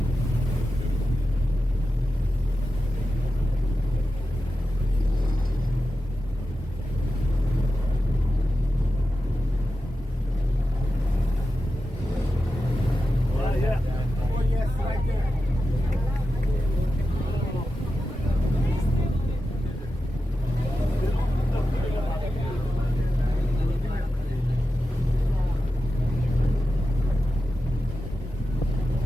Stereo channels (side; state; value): both; normal; correlation 0.92